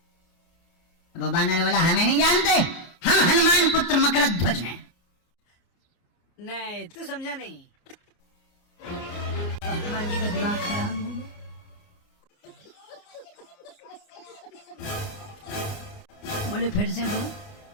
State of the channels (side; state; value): right; late; 29 ms